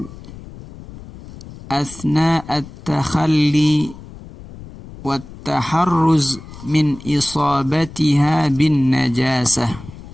asna at-takhalli wat-taharruz min isabatiha bin najasah.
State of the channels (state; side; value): noise; left; rumble, 16 dB below the sound